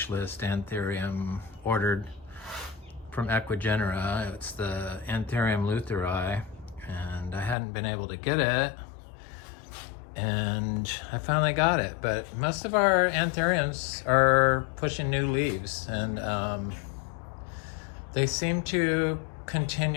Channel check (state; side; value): drops out; right; at 7.6 s